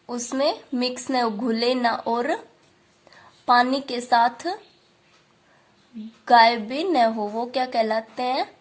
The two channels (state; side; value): identical; both; correlation 1.00